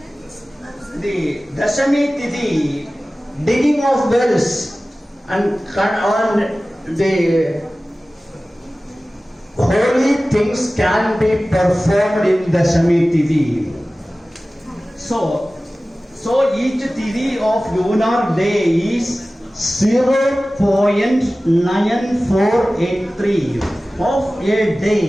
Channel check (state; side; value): normal; both; correlation 0.97